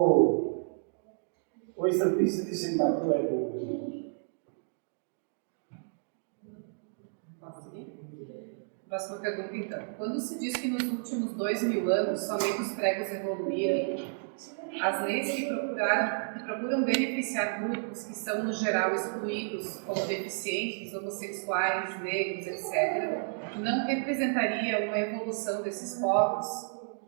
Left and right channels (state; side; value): silent; left; digital silence